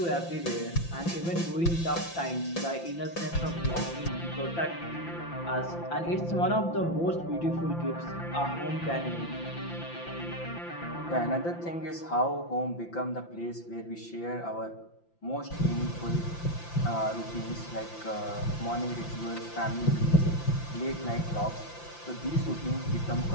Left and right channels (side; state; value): right; late; 5.9 ms